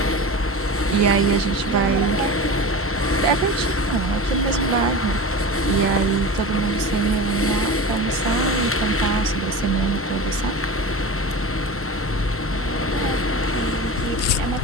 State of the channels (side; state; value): both; normal; correlation 0.30